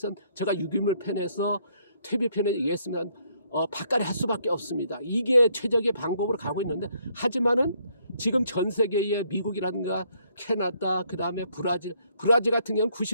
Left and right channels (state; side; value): inverted; both; correlation -0.69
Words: 제가 유기물 편에서 퇴비 편에 얘기했습니다. 바깥에 할 수밖에 없습니다. 이게 최적의 방법으로 가고 있는데 하지만은 지금 전 세계의 미국이라든가 캐나다 그 다음에 브라질 같은 경우는